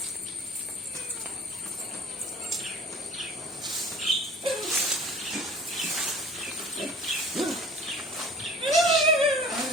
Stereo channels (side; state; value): both; normal; correlation 0.46